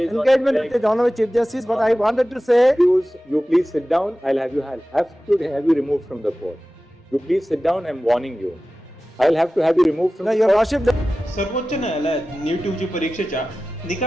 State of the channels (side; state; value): both; normal; correlation 0.95